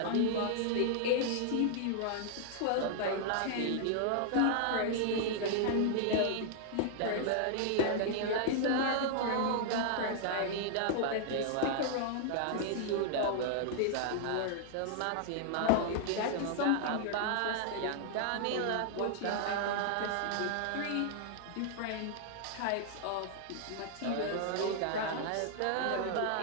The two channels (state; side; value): different; both; correlation -0.01